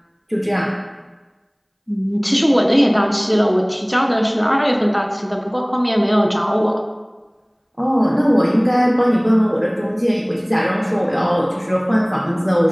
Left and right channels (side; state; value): both; identical; correlation 1.00